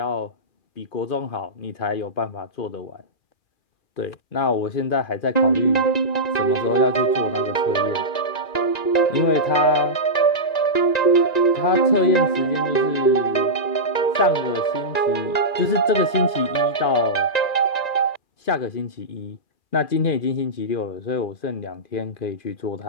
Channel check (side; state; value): right; late; 2.5 ms